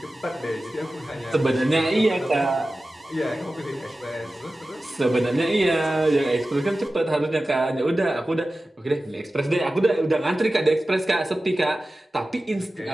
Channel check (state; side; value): normal; both; correlation 0.95